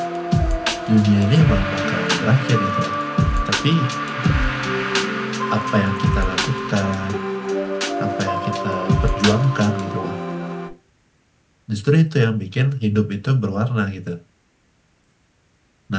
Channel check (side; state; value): both; identical; correlation 1.00